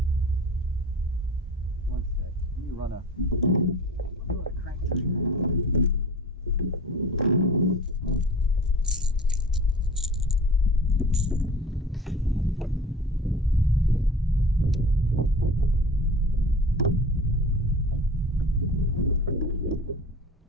One sec. Let me run a crank tree.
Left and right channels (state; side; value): normal; both; correlation 0.39